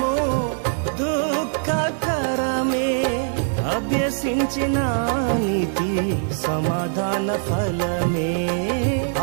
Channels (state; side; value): silent; left; digital silence